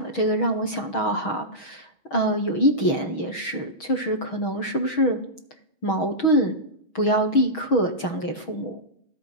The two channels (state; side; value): late; right; 6.3 ms